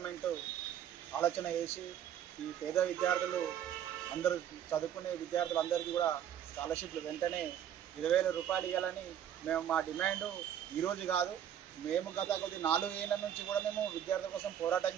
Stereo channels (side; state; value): left; quieter; 9.9 dB